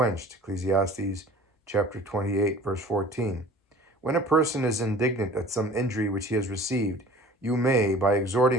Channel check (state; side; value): normal; both; correlation 0.46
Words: Ecclesiastes chapter 28, verse 14. When a person is indignant at some injury which he has received, you may, by